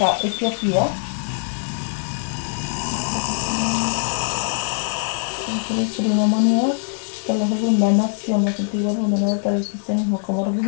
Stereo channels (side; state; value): right; silent; digital silence